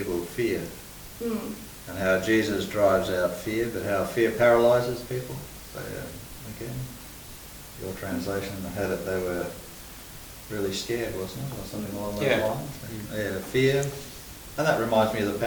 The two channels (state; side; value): identical; both; correlation 1.00